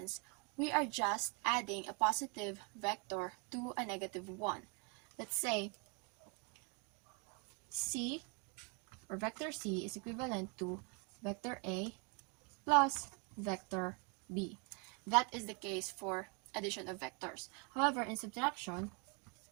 we are just adding a positive vector to a negative one. Let's say C, or vector C, is equivalent to vector A plus vector B. That is the case for addition of vectors. However, in subtraction,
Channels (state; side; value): quieter; left; 34.3 dB